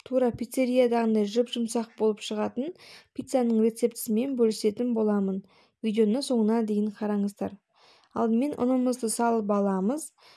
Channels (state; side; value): identical; both; correlation 1.00